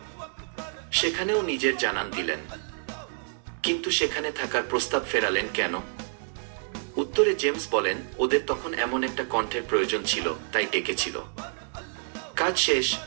সেখানেও নিজের জানান দিলেন, কিন্তু সেখানে থাকার প্রস্তাব ফেরালেন কেন? উত্তরে জেমস বলেন, ওদের তখন এমন একটা কণ্ঠের প্রয়োজন ছিল, তাই ডেকেছিল। কাজ শেষ,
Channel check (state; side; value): silent; left; 59 dB below the other